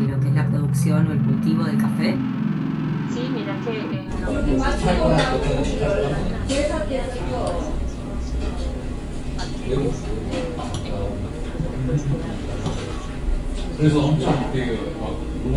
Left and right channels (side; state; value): both; identical; correlation 1.00